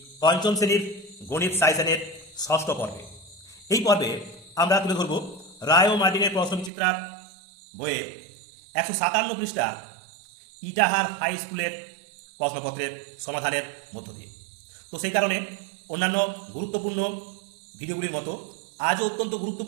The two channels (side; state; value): left; drops out; at 6.7 s